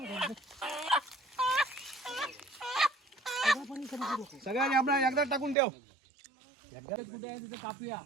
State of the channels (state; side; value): drops out; left; at 5.6 s